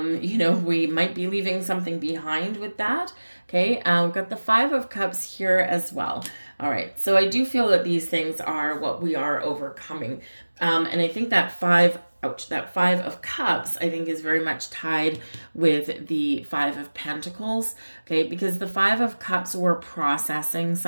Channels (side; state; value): both; inverted; correlation -1.00